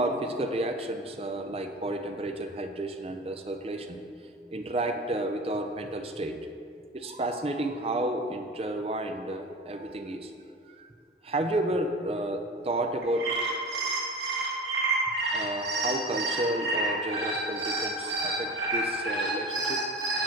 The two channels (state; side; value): normal; both; correlation 0.33